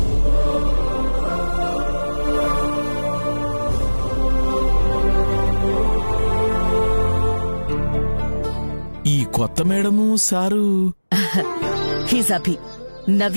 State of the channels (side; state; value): both; inverted; correlation -1.00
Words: ఈ కొత్త madam sir he's Abhi,